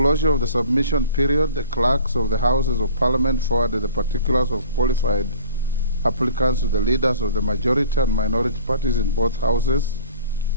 of the submission period, the clerks of the Houses of Parliament forwarded the particulars of qualified applicants to the leaders of the majority and minority parties in both houses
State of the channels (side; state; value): both; inverted; correlation -0.47